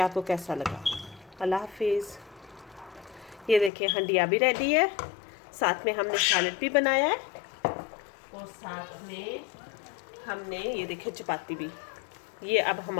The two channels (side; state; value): right; drops out; at 3.7 s